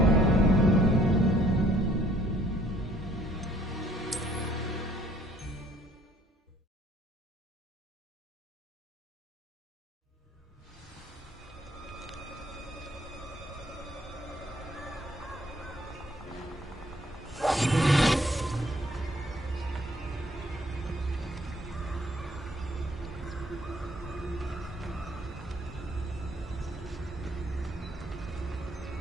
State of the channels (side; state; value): both; normal; correlation 0.62